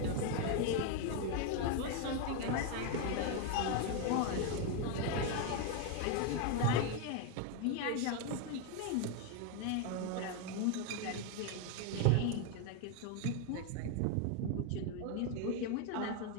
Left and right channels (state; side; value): different; both; correlation 0.01